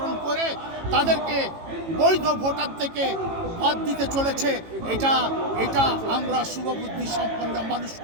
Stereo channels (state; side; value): late; left; 18 ms